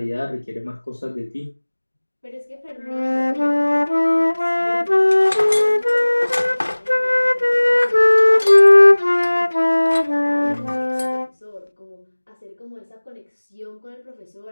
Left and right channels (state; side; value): inverted; both; correlation -1.00